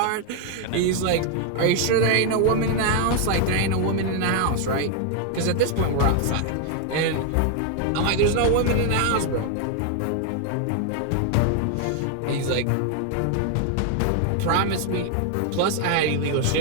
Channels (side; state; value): both; different; correlation 0.00